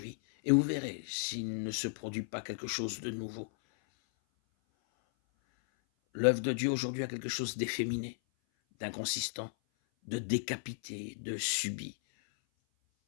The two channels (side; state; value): right; silent; 55 dB below the other